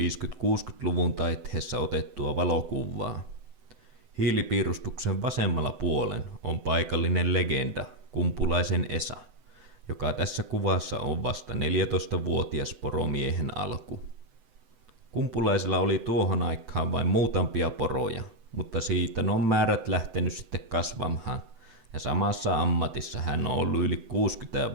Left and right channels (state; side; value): late; left; 7.9 ms